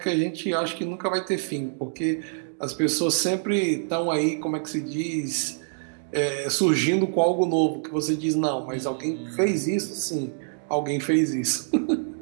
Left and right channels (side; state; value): left; silent; digital silence